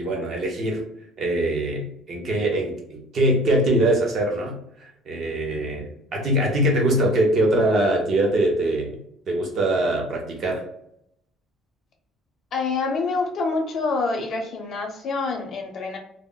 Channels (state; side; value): normal; both; correlation 0.51